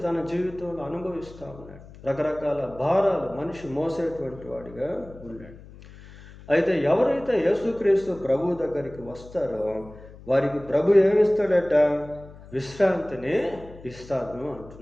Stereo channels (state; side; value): noise; left; hum, 19 dB below the sound